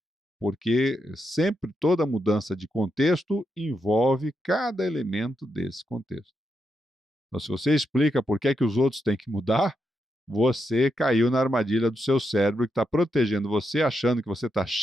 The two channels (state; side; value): normal; both; correlation 0.83